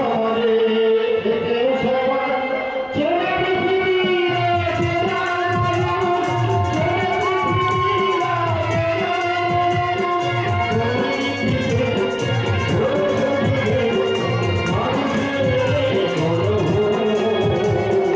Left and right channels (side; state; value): both; identical; correlation 1.00